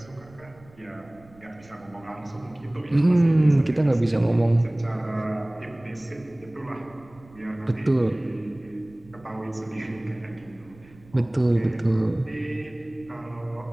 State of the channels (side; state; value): right; noise; rumble, 25 dB below the sound